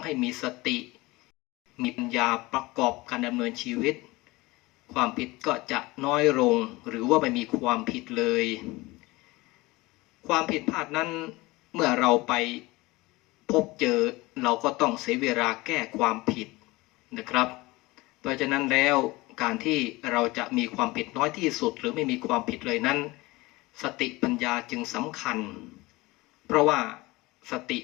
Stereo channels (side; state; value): right; quieter; 21.5 dB